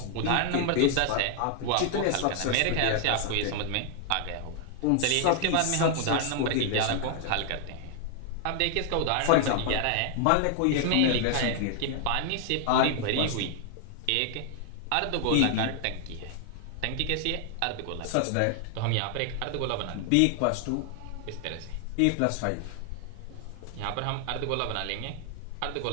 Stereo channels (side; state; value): both; different; correlation 0.00